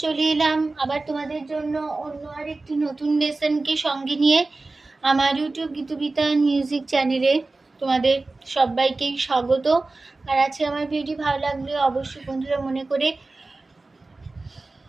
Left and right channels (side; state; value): left; quieter; 3.3 dB